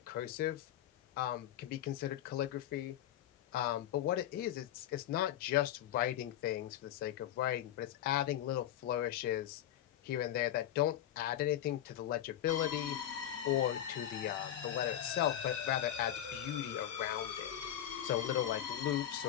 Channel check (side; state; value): right; quieter; 11.5 dB